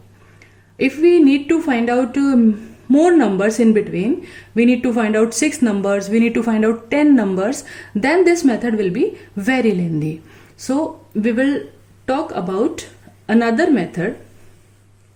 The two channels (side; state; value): both; identical; correlation 1.00